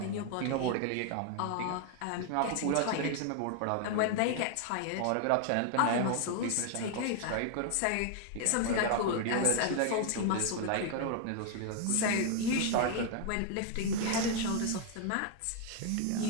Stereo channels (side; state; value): both; different; correlation 0.00